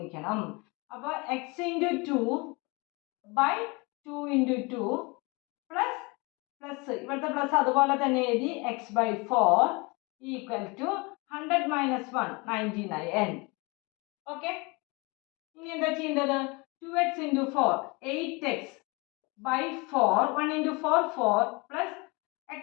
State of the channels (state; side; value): quieter; right; 27.6 dB